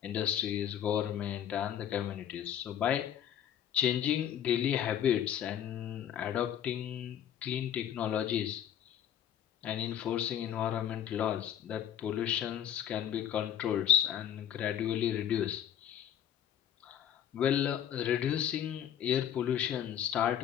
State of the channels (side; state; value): right; quieter; 10.0 dB